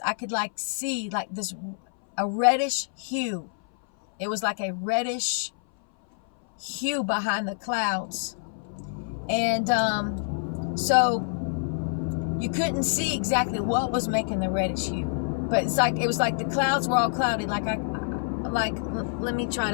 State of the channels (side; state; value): right; silent; 58 dB below the other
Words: I could like see like a reddish hue. It was like a reddish hue behind the clouds. And so you couldn't see exactly what was making the reddish hue, but it was like the clouds were all cloudy. Let me try